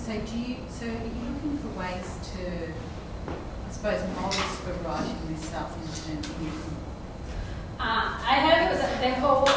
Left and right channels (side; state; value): both; identical; correlation 1.00